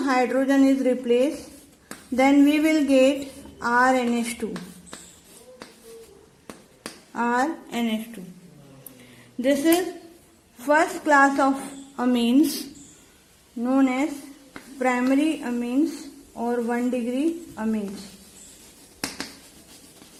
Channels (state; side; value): identical; both; correlation 1.00